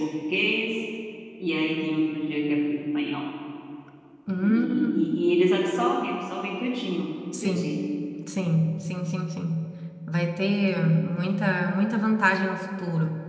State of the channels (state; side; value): identical; both; correlation 1.00